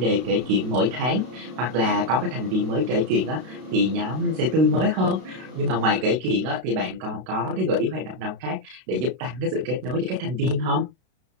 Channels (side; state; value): left; late; 32 ms